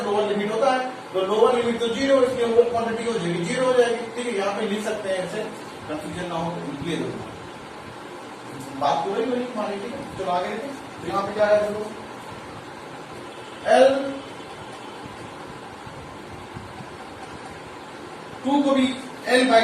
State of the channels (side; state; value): both; identical; correlation 1.00